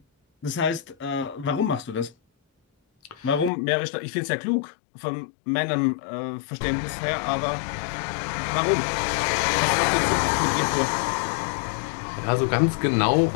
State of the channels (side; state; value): right; drops out; at 3.5 s